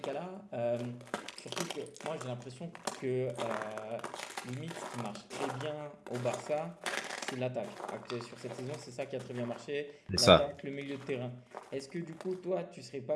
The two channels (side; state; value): both; identical; correlation 1.00